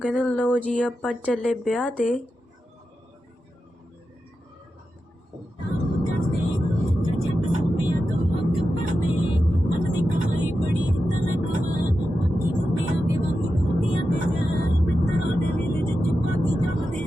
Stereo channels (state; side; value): normal; both; correlation 0.90